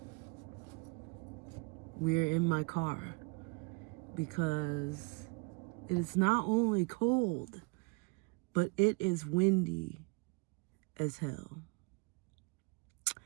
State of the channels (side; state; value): left; quieter; 29.7 dB